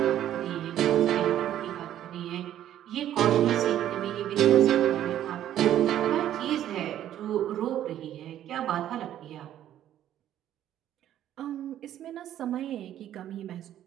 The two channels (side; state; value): left; quieter; 11.6 dB